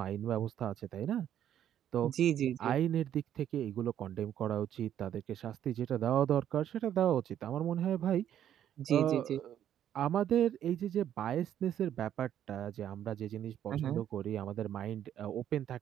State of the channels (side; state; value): left; quieter; 10.5 dB